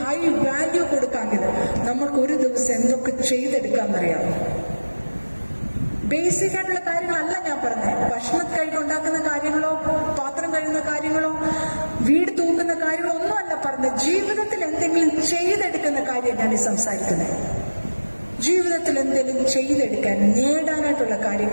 ഹൈ വാല്യൂ കൊടുക്കാമെങ്കിൽ നമ്മൾക്ക് ഒരു ദിവസം എന്തൊക്കെ ചെയ്തെടുക്കാമെന്നറിയാം. ബേസിക് ആയിട്ടുള്ള കാര്യങ്ങളല്ല ഞാൻ പറഞ്ഞത്. ഭക്ഷണം ഉണ്ടാക്കുന്ന കാര്യങ്ങളോ, പാത്രം കഴുകുന്ന കാര്യങ്ങളോ, വീട് തൂക്കുന്ന കാര്യങ്ങളോ ഒന്നുമല്ല പറഞ്ഞത്. ജീവിതത്തിൽ എന്തെങ്കിലും ചെയ്തെടുക്കുന്ന കാര്യം ഞാൻ ഈ സംസാരിക്കുന്നത്. ജീവിതത്തിൽ എന്തെങ്കിലും ചെയ്തെടുക്കാൻ, നേടാനായിട്ടുള്ള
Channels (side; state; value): both; inverted; correlation -1.00